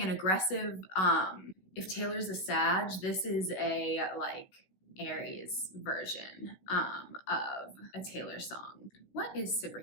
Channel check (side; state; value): right; late; 16 ms